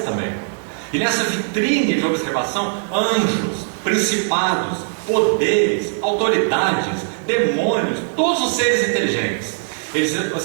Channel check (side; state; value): left; silent; 63 dB below the other